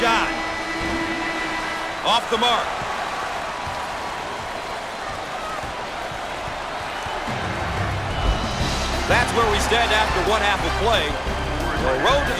Off the mark. That's where we stand after one half of play. The road to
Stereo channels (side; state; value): both; identical; correlation 1.00